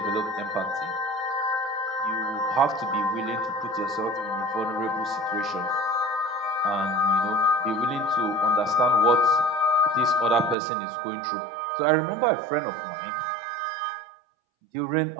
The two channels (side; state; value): left; drops out; at 10.6 s